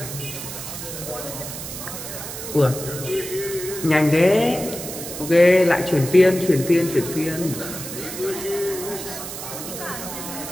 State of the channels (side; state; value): right; noise; hiss, 8 dB below the sound